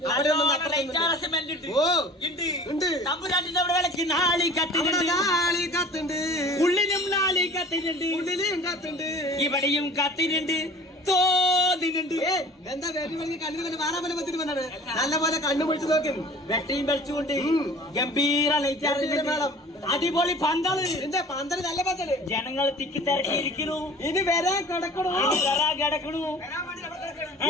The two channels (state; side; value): normal; both; correlation 0.45